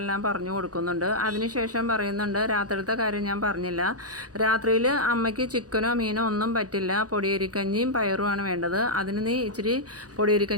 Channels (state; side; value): late; left; 0.67 ms